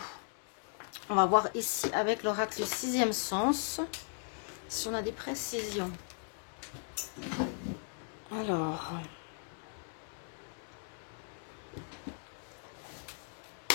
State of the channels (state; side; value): silent; right; 53 dB below the other